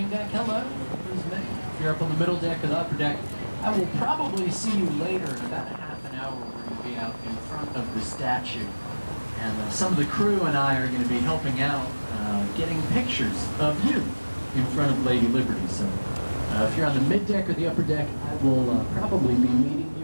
deck, hello. If you're up on the middle deck or the upper deck, I will probably see you later in about a half an hour. We're going to be out in front of the statue. And some of the crew and I are going to be helping out, getting pictures of you in front of Lady Liberty. So if you're on the mid deck or the upper deck, I will probably be meeting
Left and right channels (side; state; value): both; inverted; correlation -1.00